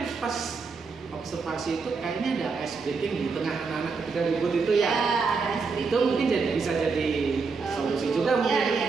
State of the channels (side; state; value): left; quieter; 4.7 dB